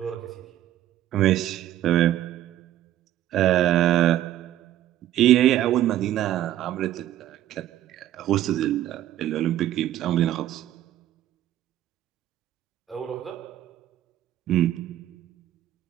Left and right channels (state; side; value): quieter; left; 12.8 dB